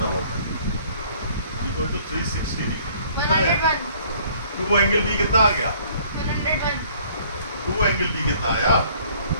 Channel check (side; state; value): both; inverted; correlation -0.58